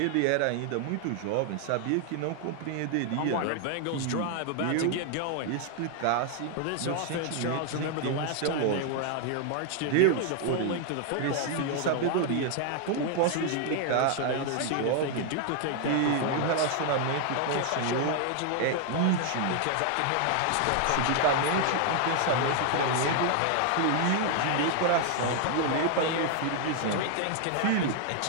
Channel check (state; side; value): different; both; correlation 0.00